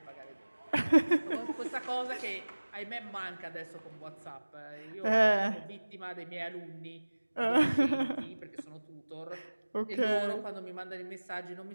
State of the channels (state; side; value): inverted; both; correlation -1.00